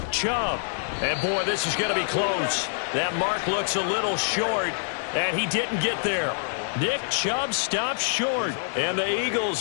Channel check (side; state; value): right; silent; digital silence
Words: Chubb. And, boy, this is going to be close. That mark looks a little short, and he didn't get there. Nick Chubb stops short, and the Eagles